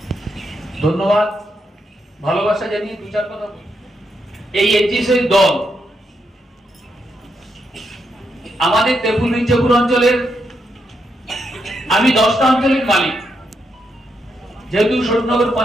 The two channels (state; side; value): normal; both; correlation 0.81